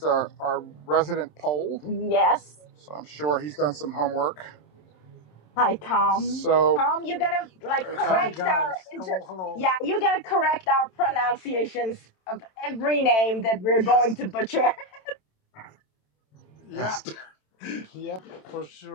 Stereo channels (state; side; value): late; right; 27 ms